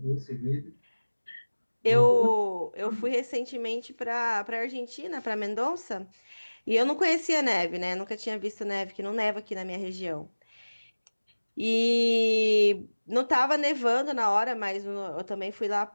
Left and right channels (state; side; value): inverted; both; correlation -1.00